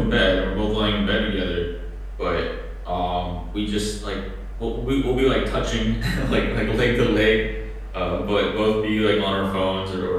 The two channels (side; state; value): both; identical; correlation 1.00